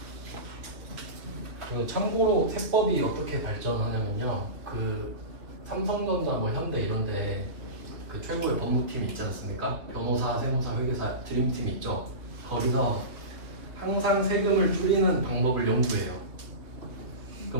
그리고 참고로 세법이 어떻게 발전하냐면요. 그 삼성전자, 뭐 현대 이런데 그 최고의 법무팀이 있지 않습니까? 변호사, 세무사, 회계사 드림팀 있죠. 거기서 항상 세금을 줄이는 방법을 연구해요.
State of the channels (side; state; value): left; late; 2.7 ms